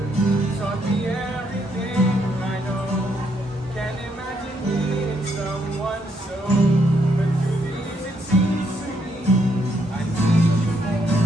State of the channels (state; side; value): normal; both; correlation 0.74